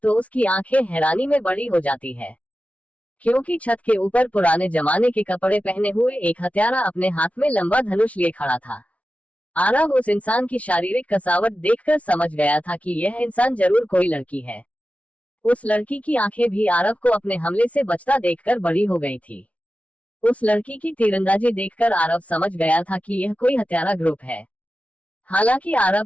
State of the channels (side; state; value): right; late; 0.066 ms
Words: तो उसकी आंखें हैरानी में बड़ी हो जाती है, क्योंकि छत के ऊपर पुराने जमाने के कपड़े पहने हुए एक हत्यारा अपने हाथ में लंबा धनुष लिए खड़ा था। आरव उस इंसान की शारीरिक कसावट देखकर समझ गया था कि यह इंसान जरूर कोई लड़की है। उस लड़की की आंखें भी आरव को अपने हमले से बचता देखकर बड़ी हो गई थी। उस लड़की की तीरंदाजी देखकर आरव समझ गया था कि यह कोई हत्यारा ग्रुप है। हालांकि आरव